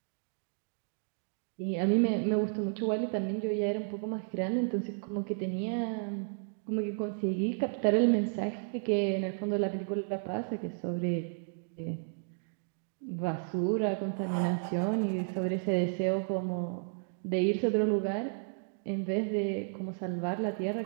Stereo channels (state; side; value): silent; left; digital silence